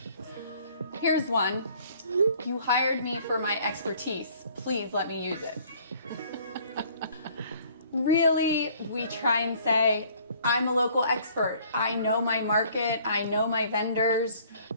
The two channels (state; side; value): inverted; both; correlation -0.57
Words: Here's one. You hired me for my expertise. Please let me use it. Really, we try and say, I'm a local expert. I know my market. I know my vendors.